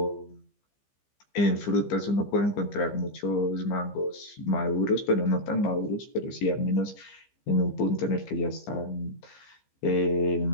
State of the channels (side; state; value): right; late; 15 ms